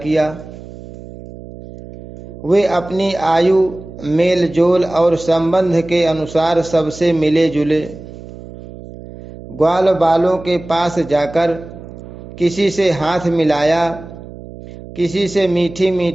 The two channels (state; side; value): noise; right; hum, 15 dB below the sound